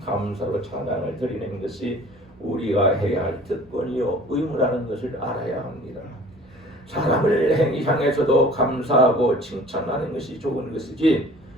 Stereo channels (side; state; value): both; normal; correlation 0.48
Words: 감사로 찬양을 드리는 것이 우리가 해야 할 특권이요 의무라는 것을 알아야 합니다. 사람을 향해서도 감사하고 칭찬하는 것이 좋은 것이지